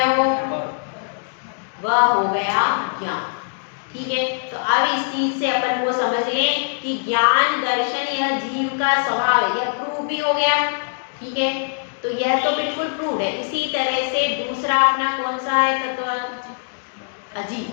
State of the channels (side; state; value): right; silent; digital silence